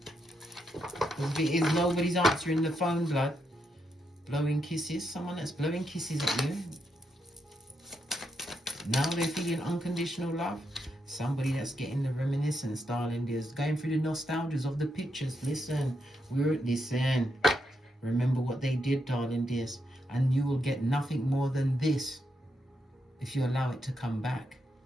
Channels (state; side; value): normal; both; correlation 0.81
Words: Because if it is, nobody's answering the phone, blood. Blowing kisses. Someone that's blowing kisses at you. Now they're feeling unconditional love. Somebody that's getting the reminiscence, darling dears. Going through the nostalgias of the pictures. Listen. Listen. Remember what they did, darling dears. And you will get nothing more than this if you allow it to come back